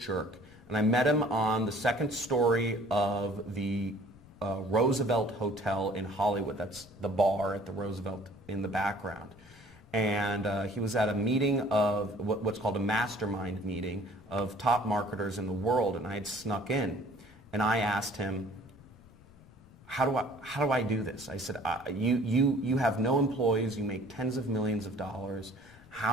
And I met him on the second story of the Roosevelt Hotel in Hollywood. That's the bar at the Roosevelt in the background. And he was at a meeting of what's called a mastermind meeting of top marketers in the world, and I had snuck in. And I asked him, how do I do this? I said, you have no employees, you make tens of millions of dollars.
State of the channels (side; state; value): left; noise; rumble, 24 dB below the sound